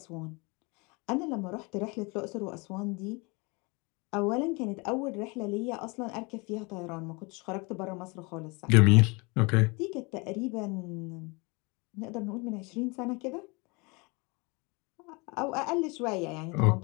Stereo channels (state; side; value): quieter; right; 28.5 dB